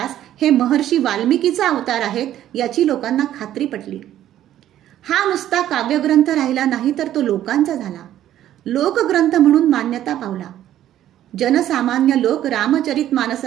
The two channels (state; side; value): quieter; left; 12.1 dB